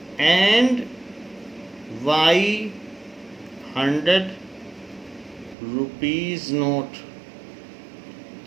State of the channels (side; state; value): left; drops out; at 5.6 s